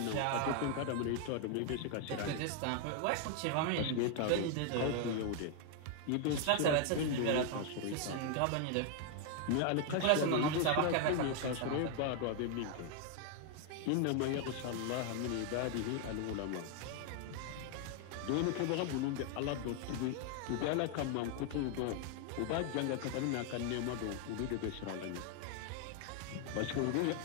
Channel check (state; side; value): different; both; correlation 0.00